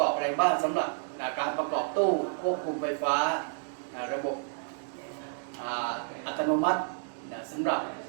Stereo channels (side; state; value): left; silent; digital silence